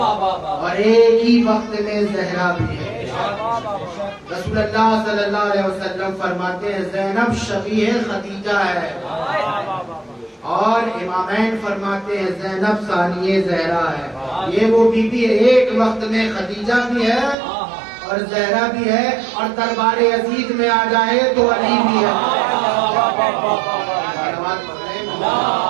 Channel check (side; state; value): left; drops out; at 17.4 s